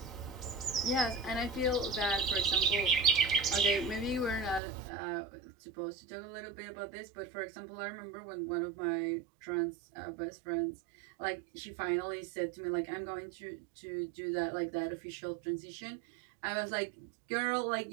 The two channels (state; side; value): drops out; left; at 4.6 s